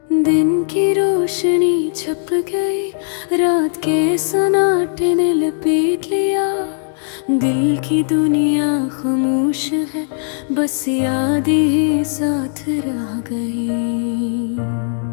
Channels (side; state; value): right; silent; digital silence